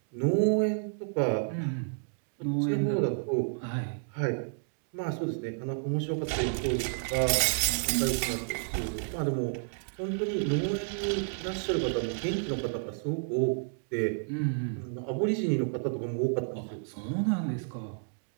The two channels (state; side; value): silent; left; digital silence